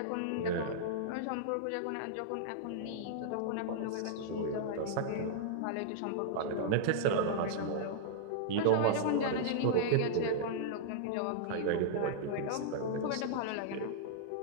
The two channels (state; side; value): different; both; correlation -0.02